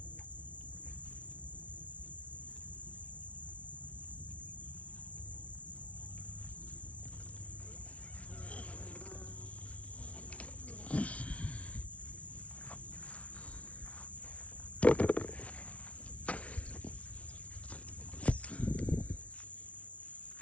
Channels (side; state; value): right; late; 0.064 ms